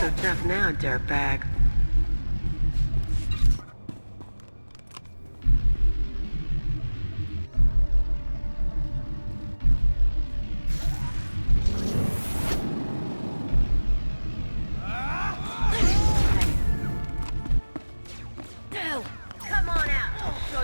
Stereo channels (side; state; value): both; inverted; correlation -1.00